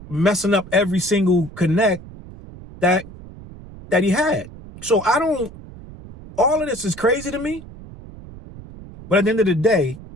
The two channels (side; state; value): right; noise; rumble, 17 dB below the sound